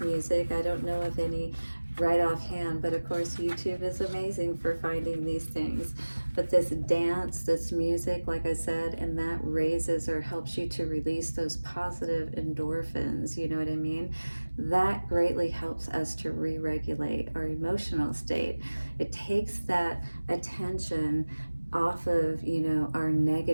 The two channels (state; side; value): inverted; both; correlation -1.00